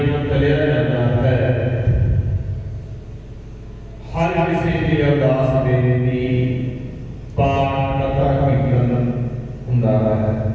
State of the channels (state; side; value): identical; both; correlation 1.00